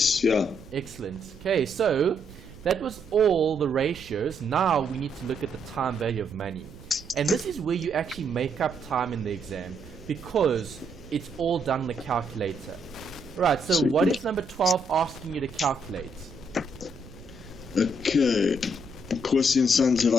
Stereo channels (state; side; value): noise; right; rumble, 19 dB below the sound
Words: Yeah. Excellent. Okay, so that was all the ratios. Now we need to look at the time value of money. And this is where you actually make up time in the exam because it's all done on the calculator. Right, so what is number 12 asking you to calculate? Okay. Corsi and Sons have